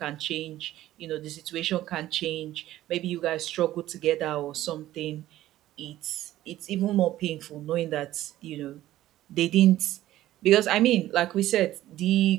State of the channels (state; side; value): quieter; left; 14.4 dB